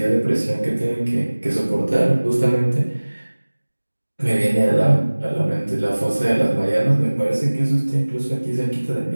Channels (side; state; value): both; inverted; correlation -1.00